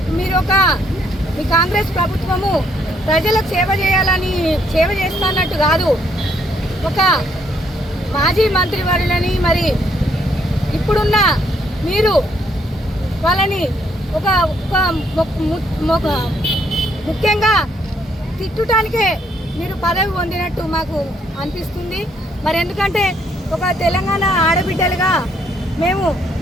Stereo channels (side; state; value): both; normal; correlation 0.70